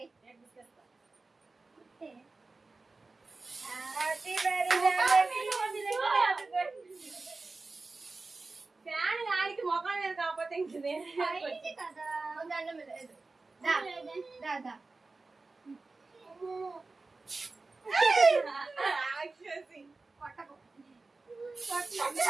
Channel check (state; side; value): quieter; left; 3.6 dB